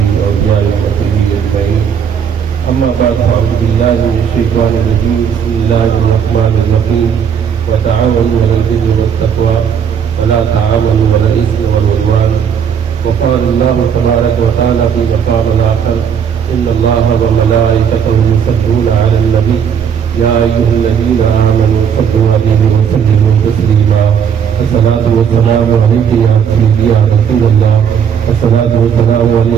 أولياء وصحبه أجمعين أما بعد فأعوذ بالله من الشيطان الرجيم بسم الله الرحمن الرحيم وتعاونوا على البر والتقوى ولا تعاونوا على الإثم والعدوان وقال الله تبارك وتعالى في مقام آخر إن الله وملائكته يصلون على النبي يا أيها الذين آمنوا صلوا عليه وسلموا تسليما الصلاة والسلام عليك يا سيدي يا رسول الله الصلاة والسلام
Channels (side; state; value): left; quieter; 7.6 dB